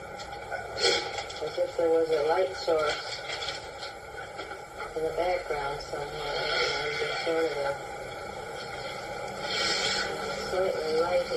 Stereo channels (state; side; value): identical; both; correlation 1.00